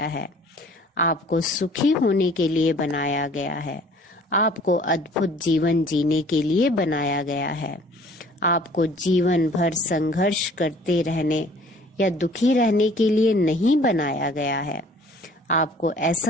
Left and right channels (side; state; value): both; normal; correlation 0.53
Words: है। आपको सुखी होने के लिए बनाया गया है। आपको अद्भुत जीवन जीने के लिए बनाया गया है। आपको जीवन भर संघर्ष करते रहने या दुखी रहने के लिए नहीं बनाया गया है। आपको